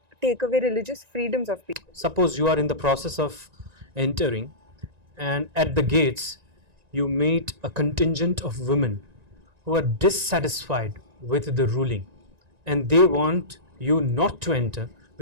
take away religious freedoms of people. Suppose you are in the process of entering, and at the gates you meet a contingent of women who are dissatisfied with the ruling and they want you not to enter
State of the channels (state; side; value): late; left; 1.9 ms